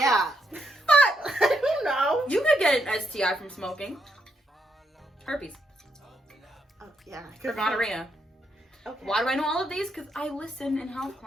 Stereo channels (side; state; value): both; normal; correlation 0.79